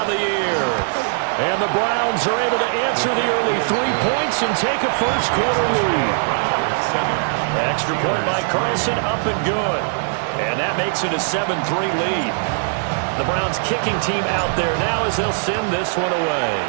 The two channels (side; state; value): left; silent; digital silence